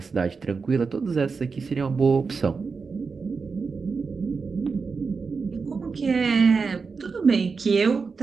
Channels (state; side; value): quieter; left; 4.9 dB